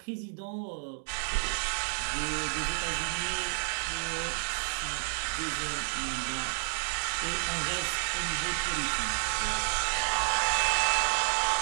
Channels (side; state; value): left; silent; 57 dB below the other